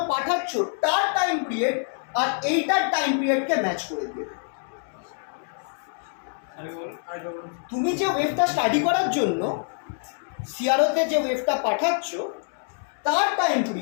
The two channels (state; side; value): silent; right; digital silence